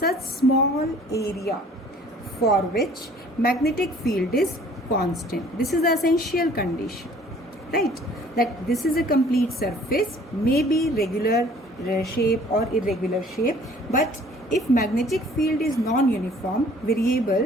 small area for which magnetic field is constant. This is the essential condition, right? That this is a complete surface, may be regular shape or irregular shape, but if magnetic field is non-uniform,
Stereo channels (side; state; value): both; normal; correlation 0.54